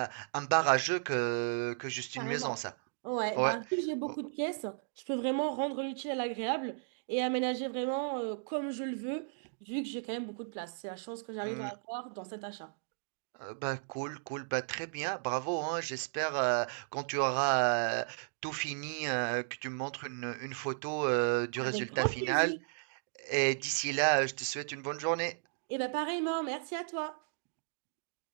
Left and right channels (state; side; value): silent; left; digital silence